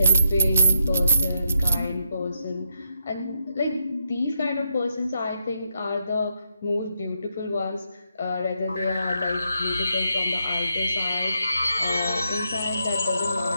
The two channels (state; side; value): inverted; both; correlation -0.79